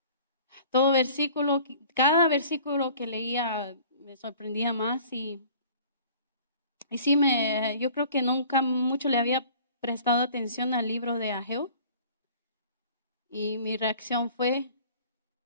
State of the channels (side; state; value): both; inverted; correlation -0.49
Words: Todo versículo, cada versículo que leía me sorprendía más y sí, yo creo que nunca mucho le había prestado atención al libro de Ageo y mi reacción fue,